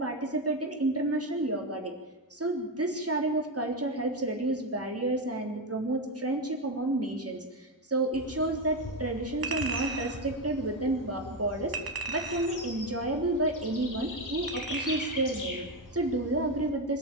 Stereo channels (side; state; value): both; normal; correlation 0.11